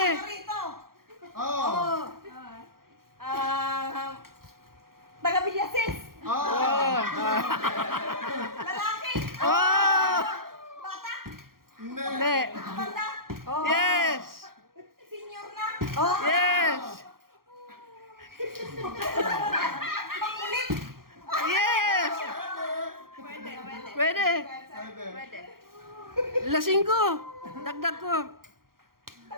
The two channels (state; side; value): late; left; 0.92 ms